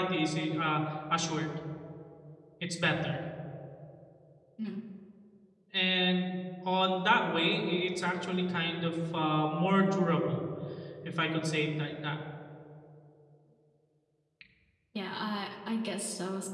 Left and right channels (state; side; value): identical; both; correlation 1.00